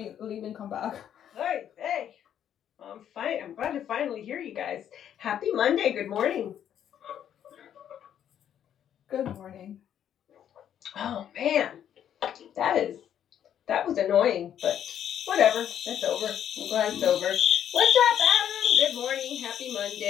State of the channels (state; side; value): quieter; right; 9.8 dB